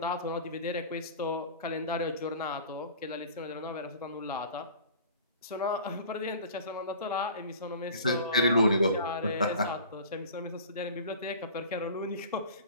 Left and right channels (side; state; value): both; inverted; correlation -0.41